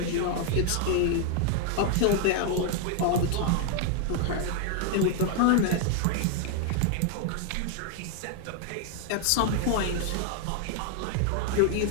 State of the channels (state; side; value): different; both; correlation 0.00